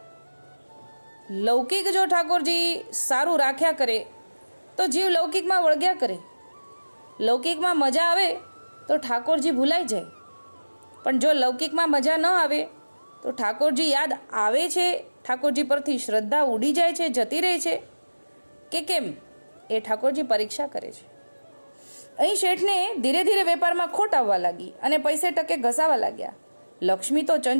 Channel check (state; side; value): inverted; both; correlation -1.00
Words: લૌકિક જો ઠાકોરજી સારું રાખ્યા કરે તો જીવ લૌકિકમાં વળગ્યા કરે. લૌકિકમાં મજા આવે તો ઠાકોરજી ભૂલાઈ જાય. પણ જો લૌકિકમાં મજા ન આવે તો ઠાકોરજી યાદ આવે છે, ઠાકોરજી પરથી શ્રદ્ધા ઉડી જાય છે, જતી રહે છે કે કેમ, એ ઠાકોરજી પરીક્ષા કરે છે. અહીં શેઠને ધીરે ધીરે વેપારમાં ખોટ આવવા લાગી અને પૈસે ટકે ઘસાવા લાગ્યા. લક્ષ્મી તો